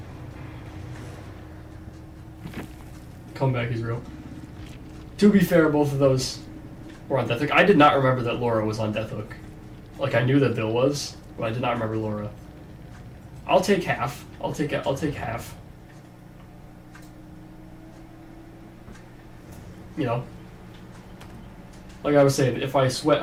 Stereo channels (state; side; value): identical; both; correlation 1.00